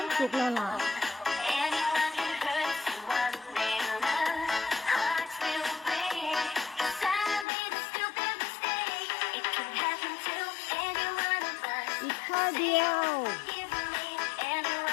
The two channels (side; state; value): right; drops out; at 7.5 s